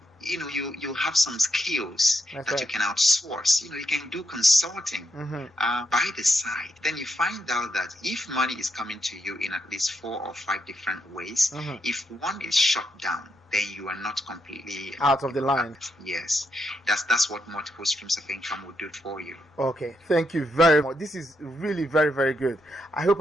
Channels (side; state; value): both; normal; correlation 0.81